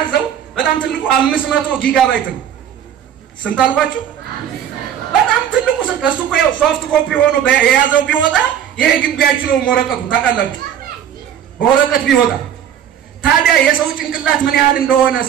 በጣም ትልቁ 500 ጊጋባይት ነው ስንት አልኳችሁ በጣም ትልቁ እሱ እኮ ሶፍት ኮፒ ሆኖ የያዘው ቢወጣ ይሄ ግቢያችሁ ነው ወረቀቱ ታውቃላችሁ ወረቀት ቢወጣ ታዲያ የሰው ጭንቅላት ምን ያህል እንደሆነ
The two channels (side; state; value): left; quieter; 9.5 dB